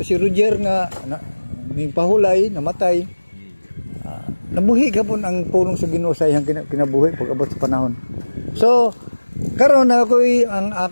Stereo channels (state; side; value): inverted; both; correlation -1.00